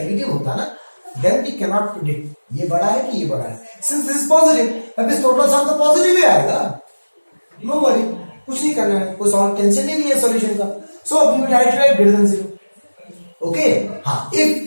होता ना then we cannot predict ये बड़ा है कि ये बड़ा है, since this is positive अब इस टोटल सम तो पॉजिटिव ही आएगा, नो वरी, कुछ नहीं करना है, कोई सॉल्व टेंशन ही नहीं है सॉल्यूशन का। So we will write greater than 0। Okay हाँ,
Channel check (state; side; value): inverted; both; correlation -1.00